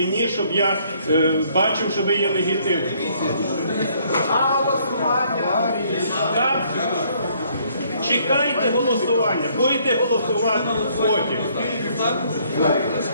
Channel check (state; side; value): inverted; both; correlation -0.65